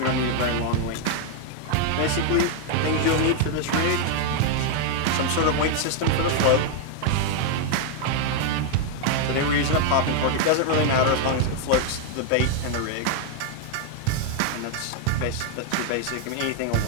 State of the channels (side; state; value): both; different; correlation 0.00